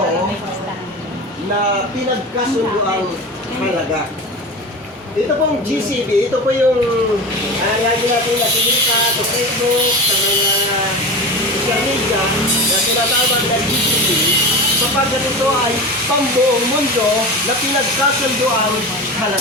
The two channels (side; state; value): both; normal; correlation 0.28